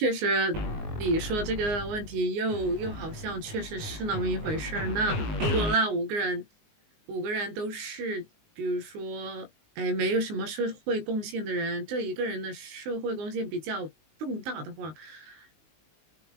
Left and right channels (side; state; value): left; late; 19 ms